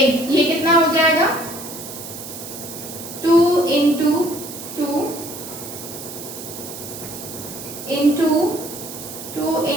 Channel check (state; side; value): noise; right; hiss, 11 dB below the sound